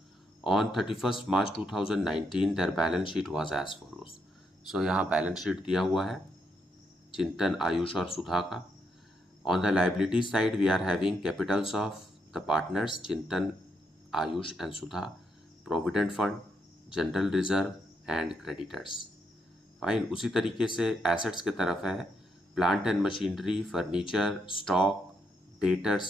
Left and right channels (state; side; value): normal; both; correlation 0.78